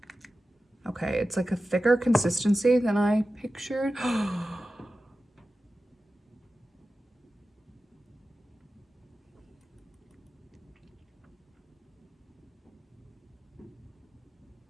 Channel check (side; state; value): both; normal; correlation 0.94